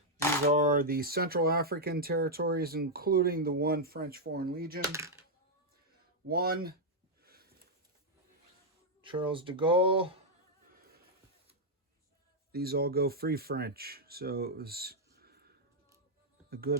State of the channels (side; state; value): both; normal; correlation -0.03